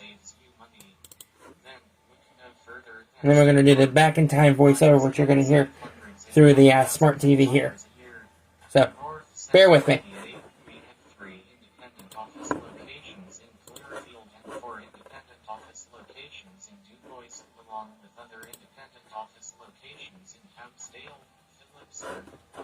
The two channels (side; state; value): both; identical; correlation 1.00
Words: you money, then look no further And then we're going to do the back in time voiceover, which you're going to hear through the smart TV here. So, bear with me. We have 3 independent office locations in Clearfield and 4 independent office locations in DuBois, along with other independent office locations in Houtzdale, Phillipsburg,